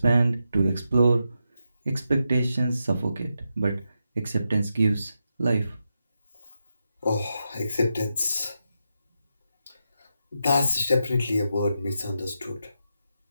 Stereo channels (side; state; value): both; inverted; correlation -0.86